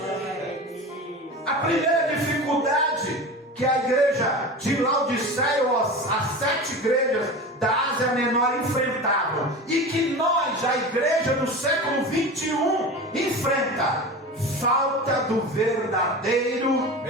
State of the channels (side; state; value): both; normal; correlation 0.30